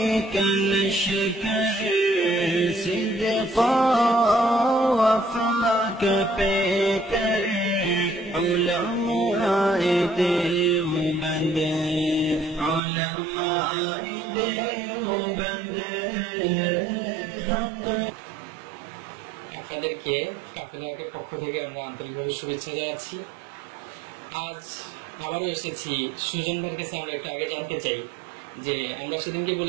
الشكر صدقا وفاك بكر علماء دیوبند علماء دیوبند আপনাদেরকে কাফেলার পক্ষ থেকে আমরা আন্তরিকভাবে শুভেচ্ছা জানাচ্ছি। আজ আবারও এসেছি সুজন ভাইয়ের কাছে। আমরা একটু আগে জানতে চাই যে আমরা সেদিনকে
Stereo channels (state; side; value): drops out; left; at 12.8 s